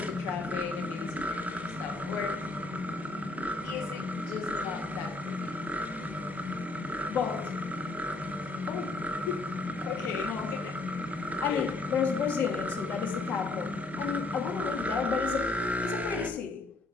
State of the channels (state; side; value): quieter; right; 3.2 dB